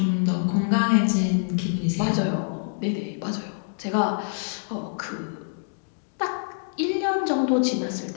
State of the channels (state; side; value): silent; right; digital silence